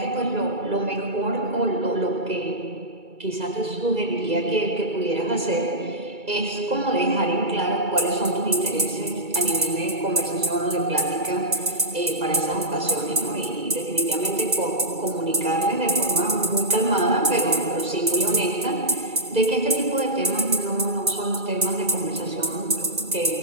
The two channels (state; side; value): late; left; 2.3 ms